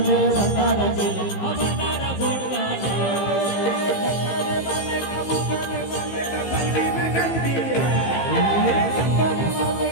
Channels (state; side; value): late; right; 15 ms